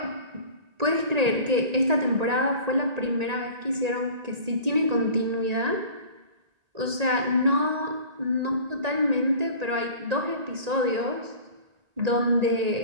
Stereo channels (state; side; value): late; left; 1.9 ms